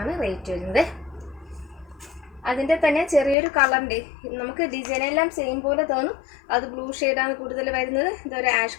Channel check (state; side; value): drops out; right; at 3.4 s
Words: ആണ് റേറ്റ് വരുന്നത്. അതിൻ്റെ തന്നെ ചെറിയൊരു കളറിൻ്റെ നമുക്ക് ഡിസൈനെല്ലാം സെയിം പോലെ തോന്നും. അത് ബ്ലൂ ഷെയ്ഡാണ് കൂടുതൽ വരുന്നത്. ഇതൊരു ആഷ്